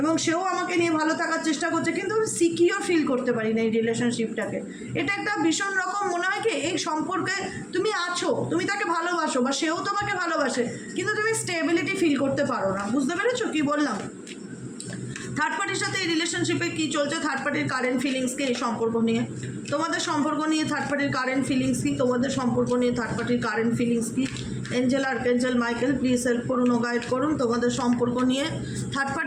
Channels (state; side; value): identical; both; correlation 1.00